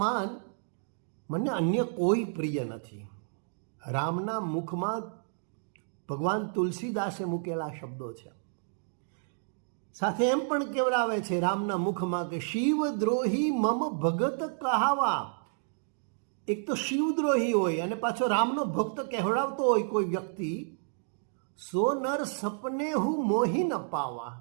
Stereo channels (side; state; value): left; silent; digital silence